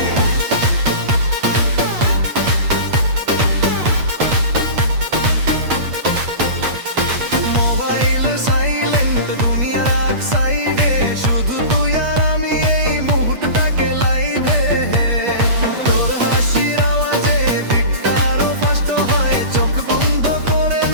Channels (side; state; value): left; late; 8.4 ms